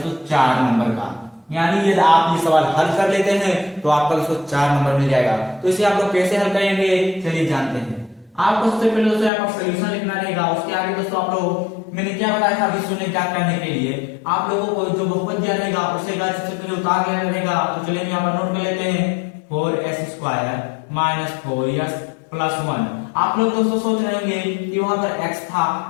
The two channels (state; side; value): drops out; right; at 9.3 s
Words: 4 नंबर का। यानी यदि आप ये सवाल हल कर लेते हैं तो आपका दोस्तों 4 नंबर मिल जाएगा। तो इसे आप लोग कैसे हल करेंगे चलिए जानते हैं। आपको सबसे पहले दोस्तों यहाँ पर सोल्यूशन लिखना रहेगा। उसके आगे दोस्तों आप लोग मैंने क्या बताया था अभी शून्य ज्ञात करने के लिए आप लोगों को जो बहुपद दिया रहेगा उसे सबसे पहले उतार लेना रहेगा। तो चलिए यहाँ पर नोट कर लेते हैं 4s² - 4s + 1। आप लोग दोस्तों सोच रहे होंगे कि वहां पर x था